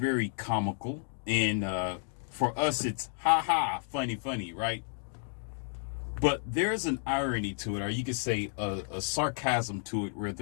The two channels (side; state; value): right; silent; 57 dB below the other